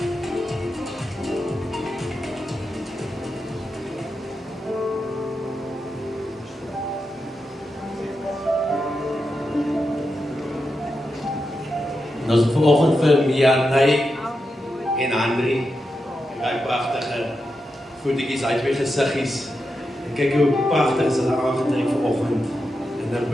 Ons het vanoggend vir Mianay en Andri, die pragtige voetjies uit twee gesiggies. En kyk hoe pragtig is hulle aangetrek vanoggend in 'n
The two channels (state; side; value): normal; both; correlation 0.88